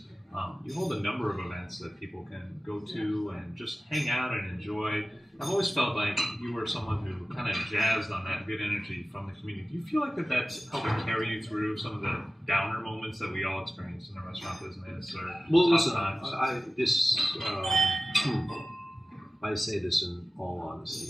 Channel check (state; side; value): normal; both; correlation 0.96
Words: You hold a number of events that people can go to and just hang out and enjoy. I've always felt like you were someone who kind of jazzed on that good energy from the community. Do you feel like that's helping carry you through some of the downer moments that we all experience in the restaurant business? Well, listen, I say this in all